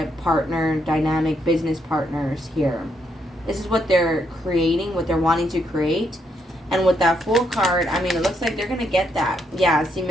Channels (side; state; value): both; normal; correlation 0.77